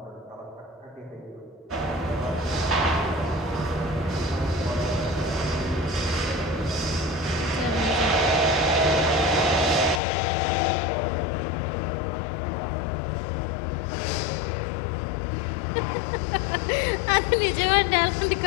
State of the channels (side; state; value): right; drops out; at 10.0 s